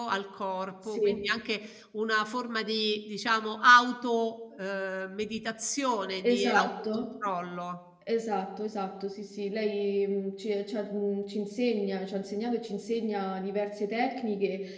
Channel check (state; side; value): identical; both; correlation 1.00